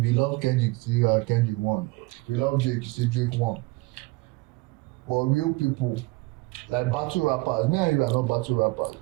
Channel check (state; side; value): quieter; left; 22.9 dB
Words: you love Kendrick, you say Kendrick won. If you love Drake, you say Drake won. But real people, like battle rappers, me and you are not battle rappers.